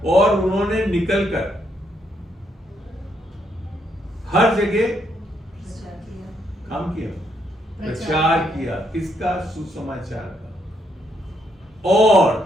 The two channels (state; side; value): normal; both; correlation 0.75